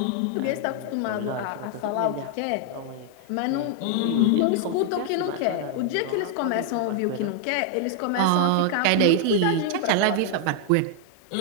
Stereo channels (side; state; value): both; different; correlation 0.00